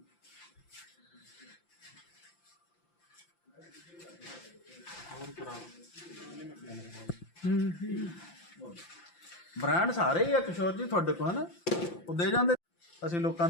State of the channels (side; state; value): right; late; 5.8 ms